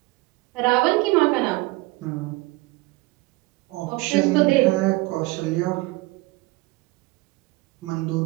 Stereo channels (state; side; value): quieter; left; 22.1 dB